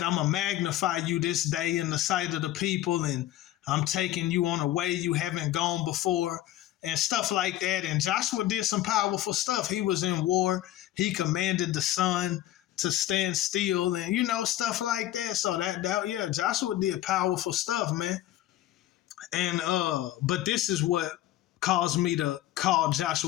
I'm gonna magnify you this day in the sight of the people, and I'm taking you on a way you haven't gone before, and stuff like that. And Joshua did some powerful stuff. He was in war. He commanded the sun to stand still, and stuff like that. So yeah, Joshua did powerful stuff, man. And but this is what caused me to call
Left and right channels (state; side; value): quieter; right; 13.9 dB